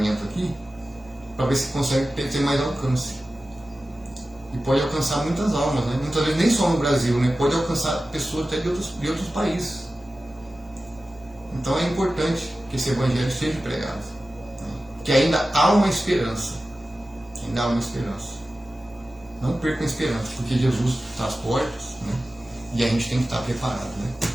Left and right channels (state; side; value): normal; both; correlation 0.95